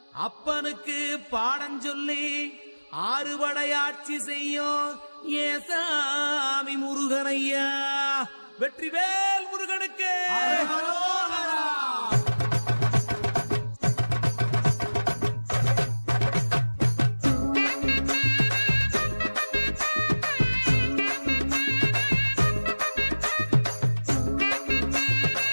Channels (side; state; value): both; inverted; correlation -1.00